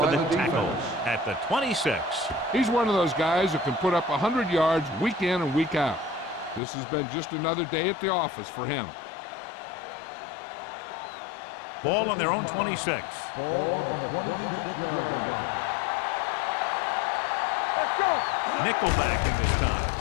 for by the the tackle defense. at the 26. He's one of those guys who can put up 100 yards week in and week out. This has been just another day at the office for him. Ball on their own 5. 26. Ball on the 26-yard line. Nickelback in this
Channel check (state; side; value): drops out; right; at 6.6 s